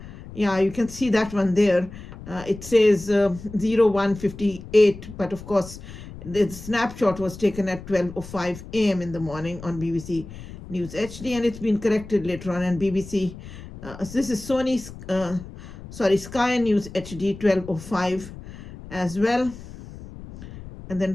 Yeah, you can see that one there. It says 01:58, but of course, the snapshot was taken at 12:05 a.m. in the morning on BBC News HD, and it's been corrected later on. And BBC, this is Sky News HD 12:05 as well. And then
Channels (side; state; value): left; noise; rumble, 14 dB below the sound